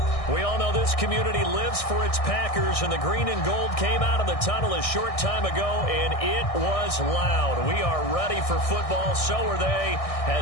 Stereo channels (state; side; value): late; right; 1.6 ms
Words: We all know this community lives for its Packers, and the green and gold came out of the tunnel a short time ago, and it was loud. We are ready for football, so are they,